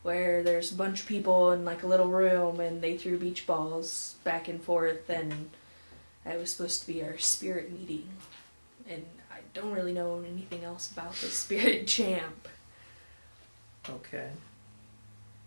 where there's a bunch of people in like a little room and they threw beach balls back and forth, and it was supposed to be our spirit meeting. And I don't really know anything else about the Spirit Champ. Okay.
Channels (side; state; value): both; inverted; correlation -1.00